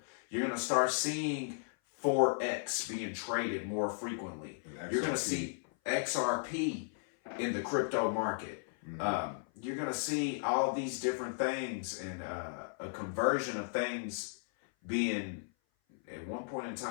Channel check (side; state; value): right; silent; 54 dB below the other